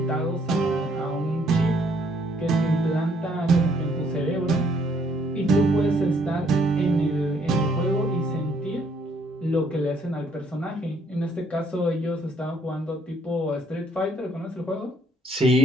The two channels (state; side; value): normal; both; correlation 0.66